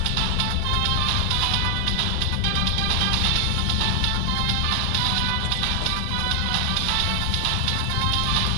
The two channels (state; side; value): different; both; correlation 0.00